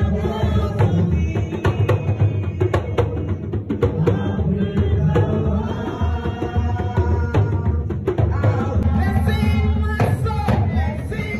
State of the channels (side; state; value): both; identical; correlation 1.00